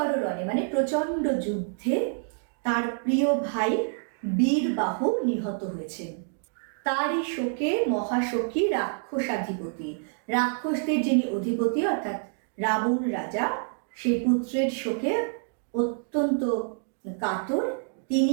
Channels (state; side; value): silent; left; digital silence